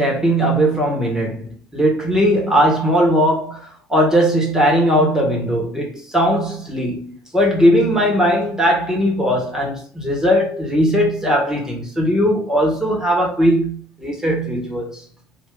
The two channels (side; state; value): both; normal; correlation 0.58